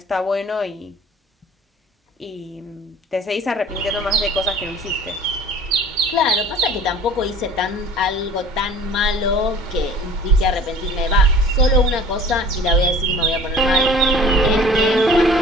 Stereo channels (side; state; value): both; normal; correlation 0.46